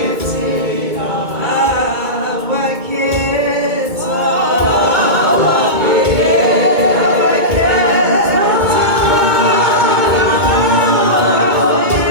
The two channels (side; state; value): left; late; 2.2 ms